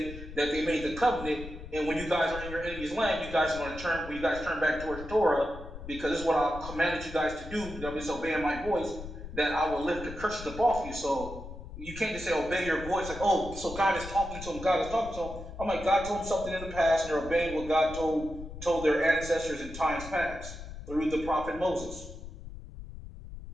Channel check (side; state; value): left; noise; rumble, 12 dB below the sound